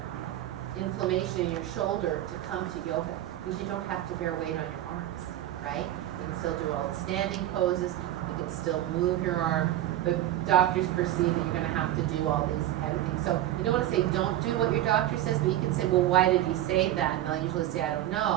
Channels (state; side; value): quieter; left; 13.5 dB